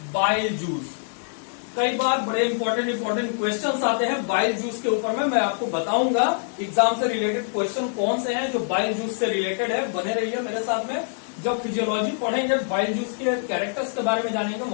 बाइल जूस। कई बार बड़े इंपॉर्टेंट क्वेश्चंस आते हैं बाइल जूस के ऊपर में, मैं आपको बताऊंगा एग्जाम से रिलेटेड क्वेश्चन कौन से हैं जो बाइल जूस से रिलेटेड है। बने रहिए मेरे साथ में। जब फिजियोलॉजी पढ़ेंगे, बाइल जूस के कैरेक्टर्स के बारे में जानेंगे,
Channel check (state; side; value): silent; right; 62 dB below the other